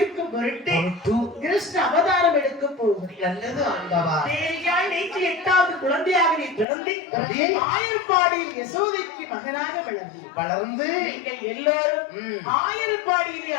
பொருட்டு கிருஷ்ண அவதாரம் எடுக்க போகிறேன். நல்லது ஆண்டவா. தேவியாய் நேற்று 8வது குழந்தையாக நீ பிறந்து ஆயர்பாடியில் யசோதைக்கு மகனாக வளர்ந்து நீங்கள் எல்லாரும் ஆயர்பாடியிலே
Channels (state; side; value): drops out; right; at 6.7 s